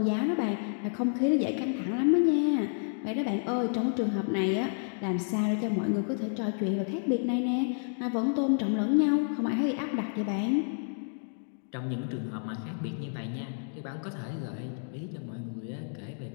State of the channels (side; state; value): right; silent; digital silence